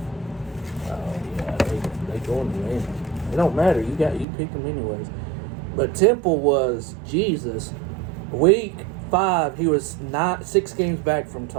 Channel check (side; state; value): left; drops out; at 4.2 s